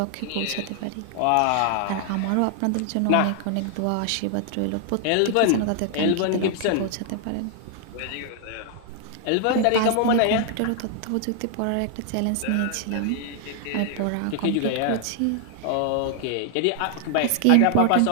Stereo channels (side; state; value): both; different; correlation 0.00